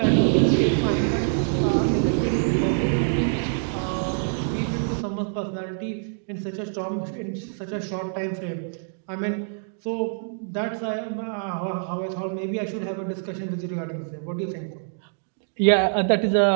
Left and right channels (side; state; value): left; silent; digital silence